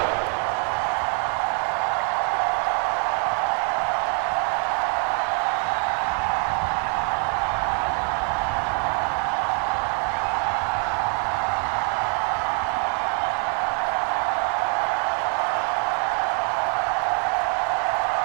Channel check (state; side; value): quieter; left; 39.6 dB